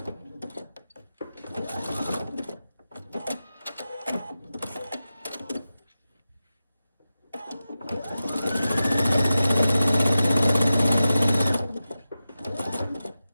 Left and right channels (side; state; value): both; inverted; correlation -0.92